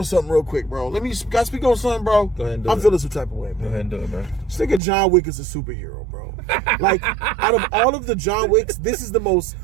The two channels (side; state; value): left; drops out; at 4.8 s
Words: something real quick, bro. Can I speak on something, bro? Go ahead and do I'm feeling some type of way, bro. Go ahead and do it, bro. This nigga John Wick is a superhero, bro. Like, out of all of the John Wicks, this is the most